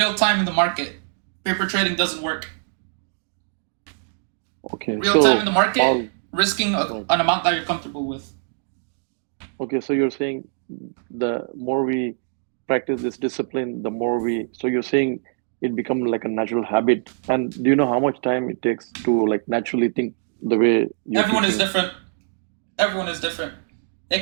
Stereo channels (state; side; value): silent; left; digital silence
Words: time in the market. Paper trading doesn't work. Okay. Real time in the market, risking an amount that you're comfortable with. Okay, so you're saying the more we practice this discipline, the more so you're saying it becomes like a natural habit. And do you know how much time it takes to like naturally think the way you Everyone is different. Everyone is different.